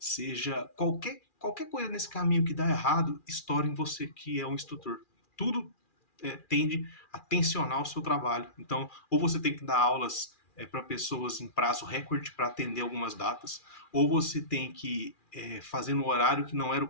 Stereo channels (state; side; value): late; right; 2.4 ms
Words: qualquer coisa nesse caminho que dá errado, estoura em você que é um instrutor. Tudo tende a tensionar o seu trabalho. Então, ou você tem que dar aulas para pessoas em prazo recorde para atender algumas datas, ou você tem que fazer no horário que não era o